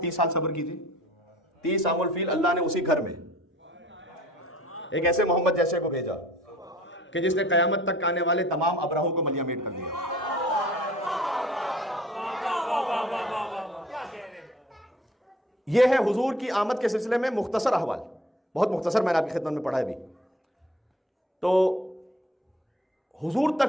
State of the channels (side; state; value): both; normal; correlation 0.51